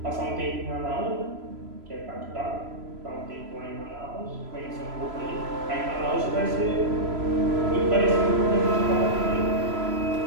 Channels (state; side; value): late; left; 3.0 ms